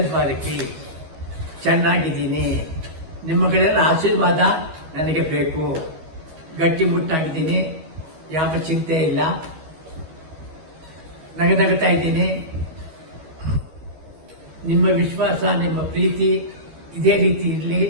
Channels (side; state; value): left; late; 12 ms